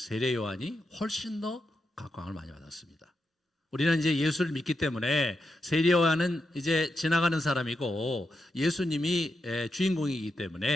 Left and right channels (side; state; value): both; normal; correlation 0.85